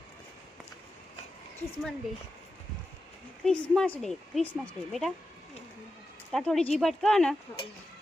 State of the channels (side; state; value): both; normal; correlation 0.90